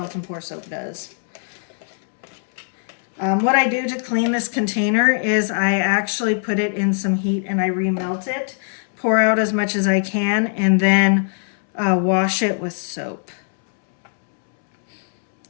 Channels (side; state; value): right; silent; 65 dB below the other